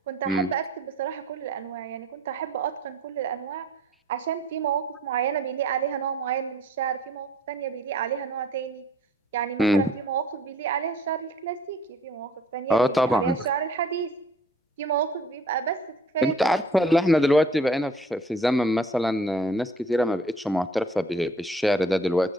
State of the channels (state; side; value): normal; both; correlation 0.55